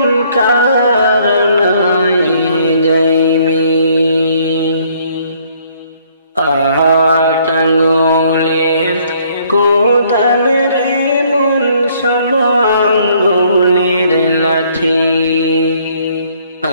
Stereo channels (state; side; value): inverted; both; correlation -0.64